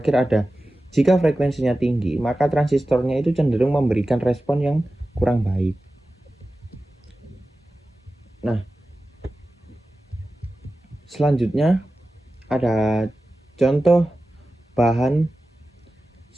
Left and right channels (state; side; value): normal; both; correlation 0.95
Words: ada jika frekuensinya tinggi, maka transistornya itu cenderung memberikan respon yang kurang baik. Nah, selanjutnya ada contoh bahan